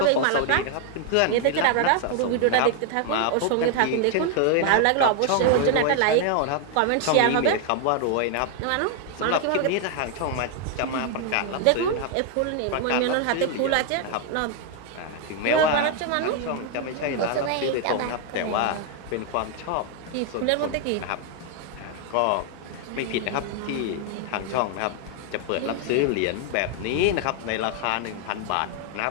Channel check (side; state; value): both; different; correlation 0.00